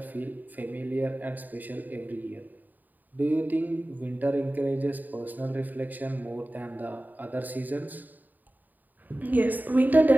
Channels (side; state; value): left; late; 0.086 ms